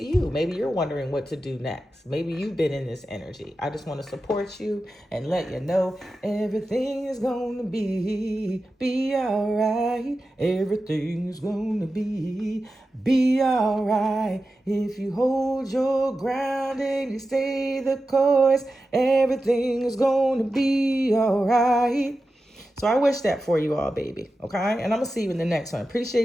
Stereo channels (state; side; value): normal; both; correlation 0.92